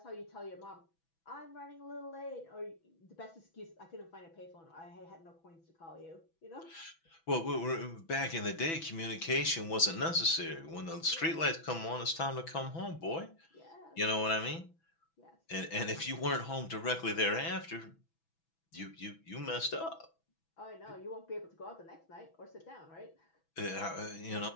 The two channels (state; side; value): late; right; 6.1 ms